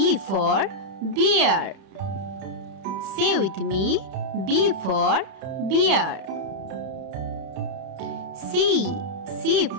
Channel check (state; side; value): late; left; 31 ms